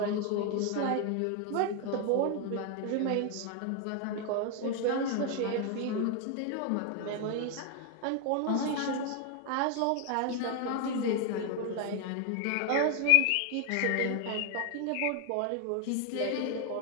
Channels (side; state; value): both; different; correlation 0.01